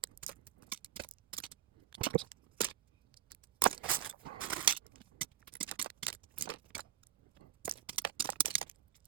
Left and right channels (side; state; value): left; quieter; 11.1 dB